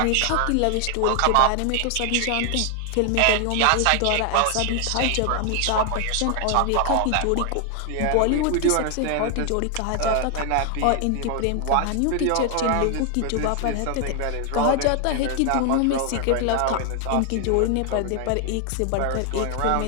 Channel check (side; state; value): both; different; correlation 0.00